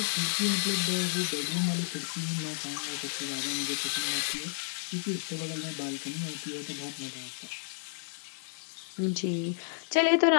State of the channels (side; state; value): right; silent; 57 dB below the other